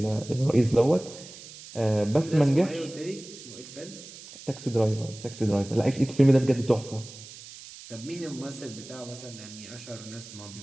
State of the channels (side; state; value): right; noise; hiss, 16 dB below the sound